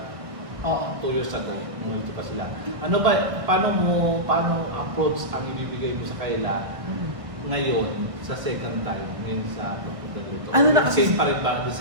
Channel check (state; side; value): late; left; 1.5 ms